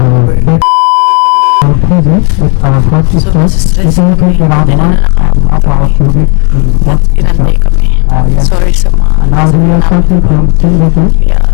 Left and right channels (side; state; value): right; quieter; 36.3 dB